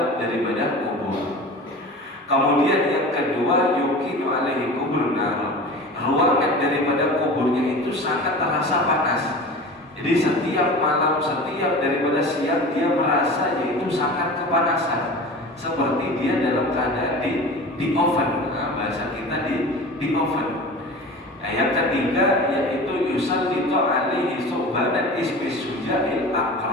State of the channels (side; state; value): both; normal; correlation 0.35